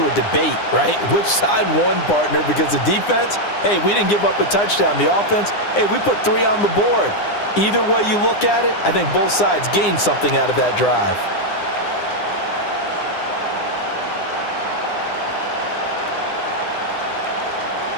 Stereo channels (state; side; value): late; right; 9.8 ms